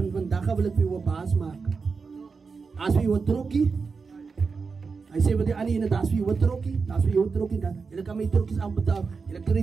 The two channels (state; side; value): quieter; left; 4.9 dB